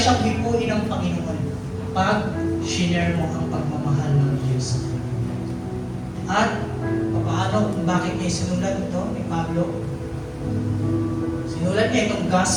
hipuin ng Panginoon pag shinare mo ang pagmamahal ng Diyos. At paano, bakit niya sinulat ito ni Pablo? Sinulat niya itong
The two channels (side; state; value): both; identical; correlation 1.00